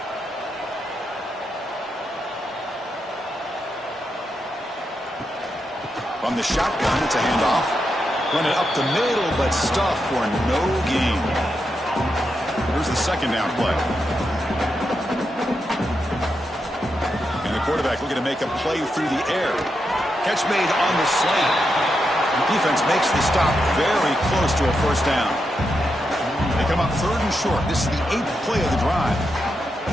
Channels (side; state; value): both; normal; correlation 0.85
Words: From the shotgun, it's a handoff. Run it up the middle, but stuffed for no gain. Here's the second down play. And the quarterback looking to make a play through the air. Catch made on the slant. The defense makes the stop very close to a first down. They come up third and short. This is the 8th play of the drive.